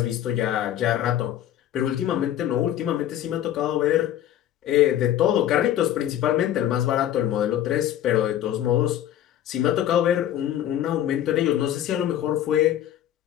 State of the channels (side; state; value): right; quieter; 11.6 dB